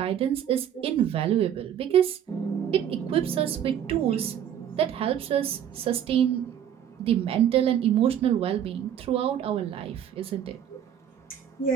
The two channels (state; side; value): quieter; left; 9.7 dB